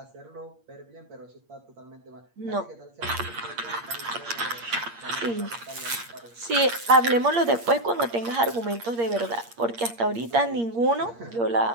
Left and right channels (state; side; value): late; left; 8.6 ms